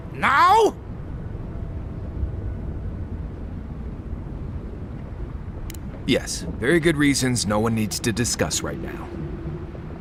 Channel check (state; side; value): identical; both; correlation 1.00